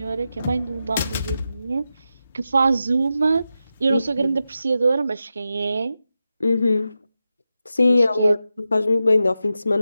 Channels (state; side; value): inverted; both; correlation -0.90